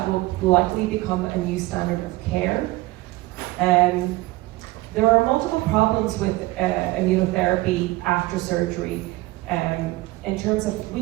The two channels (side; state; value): left; quieter; 19.8 dB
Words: will likely become a new standard of care. There are multiple problems with immunotherapy after surgery in terms of we